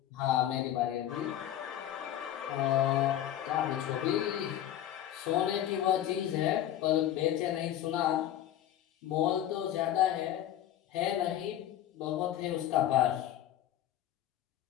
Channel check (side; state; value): right; quieter; 11.7 dB